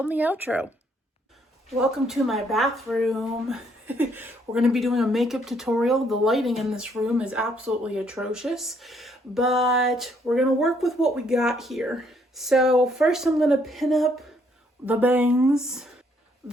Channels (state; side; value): normal; both; correlation 0.69